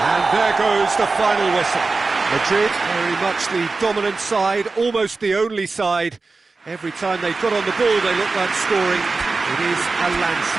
And there goes the final whistle. Madrid, very much the dominant side, almost the only side. Every time they got on the ball, they looked like scoring. It is a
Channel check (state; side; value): quieter; left; 3.9 dB